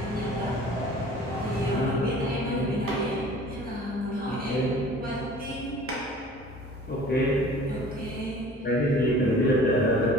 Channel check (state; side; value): normal; both; correlation 0.46